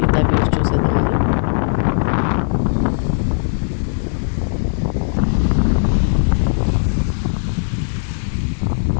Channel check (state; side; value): silent; right; 67 dB below the other